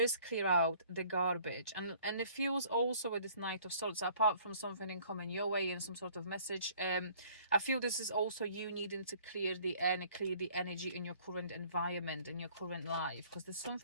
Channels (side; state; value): both; inverted; correlation -0.56